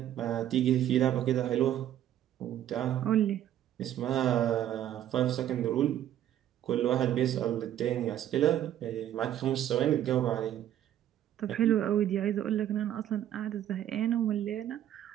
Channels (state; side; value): quieter; left; 11.5 dB